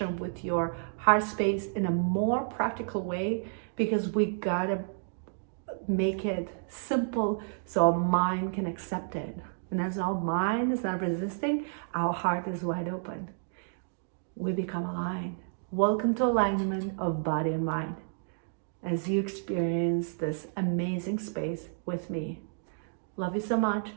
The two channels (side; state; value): left; silent; digital silence